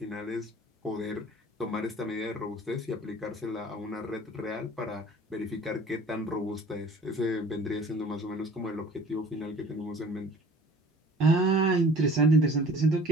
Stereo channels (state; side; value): normal; both; correlation 0.49